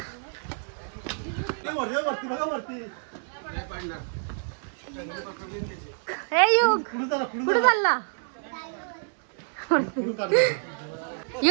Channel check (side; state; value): left; silent; 58 dB below the other